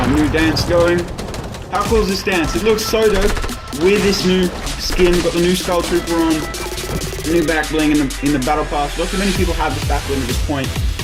new dance going. How cool is this dance? It looks so dope with this new skin. Got the new Skull Trooper on, new back bling in the battle pass. Not too many people have this back bling at this point.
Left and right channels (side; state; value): both; identical; correlation 1.00